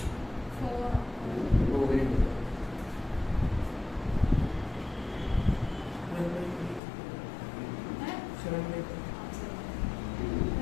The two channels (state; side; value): drops out; right; at 6.8 s